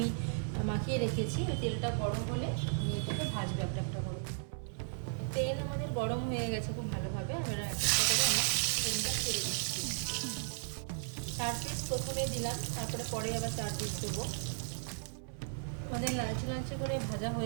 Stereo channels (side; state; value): left; silent; 54 dB below the other